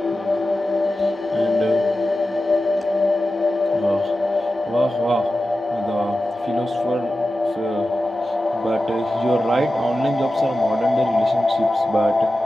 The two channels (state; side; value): normal; both; correlation 0.93